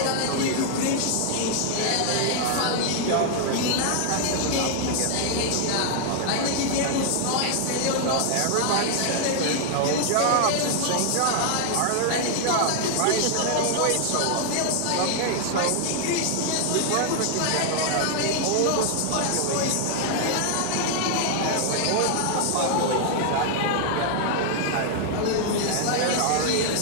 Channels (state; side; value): different; both; correlation 0.00